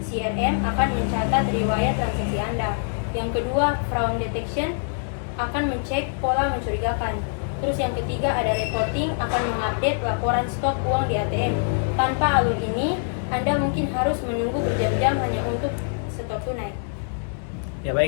CRM akan mencatat riwayat transaksi Anda. Yang kedua fraud detection akan mencek pola mencurigakan. Terus yang ketiga ada reporting akan mengupdate laporan stok uang di ATM. Tanpa alur ini, Anda mungkin harus menunggu berjam-jam hanya untuk setor tunai. Ya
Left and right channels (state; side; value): silent; right; 61 dB below the other